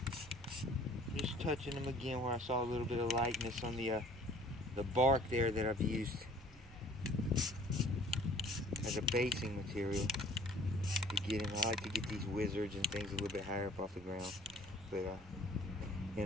just touching them again where I saw a little bit of lightness on the bark there that I've used as a basing material to get in. I like to get these wizards and things a little bit higher up off the ground, but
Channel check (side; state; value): both; normal; correlation 0.52